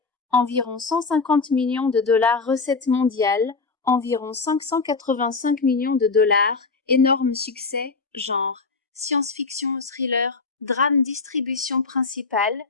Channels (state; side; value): quieter; right; 4.3 dB